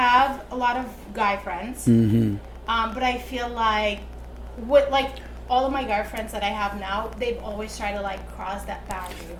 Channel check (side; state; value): both; identical; correlation 1.00